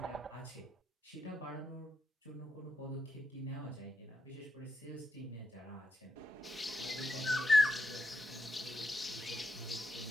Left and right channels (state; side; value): normal; both; correlation 0.84